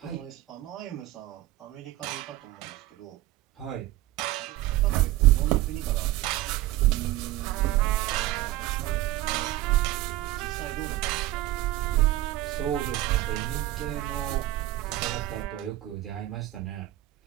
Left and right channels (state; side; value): quieter; left; 15.9 dB